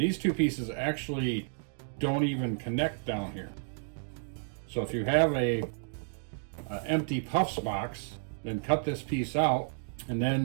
two pieces actually don't even connect down here. So if you have a empty Puffs box, then cut this piece out and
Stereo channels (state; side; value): silent; left; digital silence